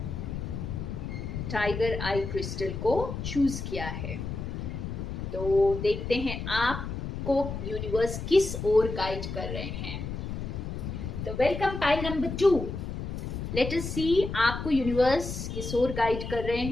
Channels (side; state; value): left; noise; rumble, 5 dB below the sound